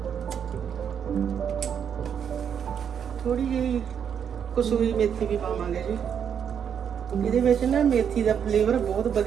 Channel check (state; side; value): quieter; left; 8.0 dB